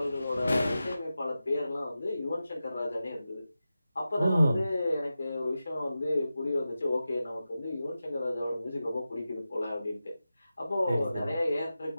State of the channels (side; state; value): both; inverted; correlation -0.93